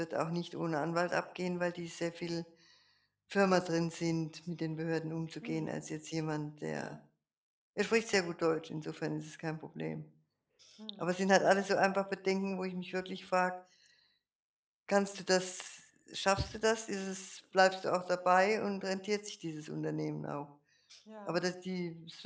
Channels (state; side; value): identical; both; correlation 1.00